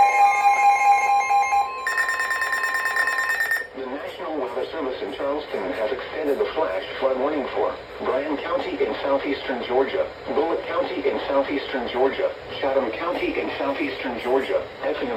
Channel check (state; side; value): identical; both; correlation 1.00